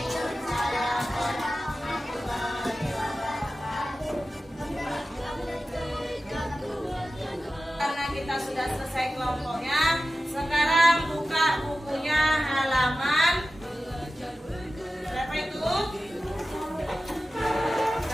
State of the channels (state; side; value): normal; both; correlation 0.94